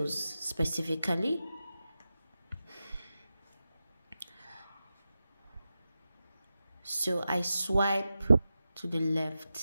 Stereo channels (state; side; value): inverted; both; correlation -0.92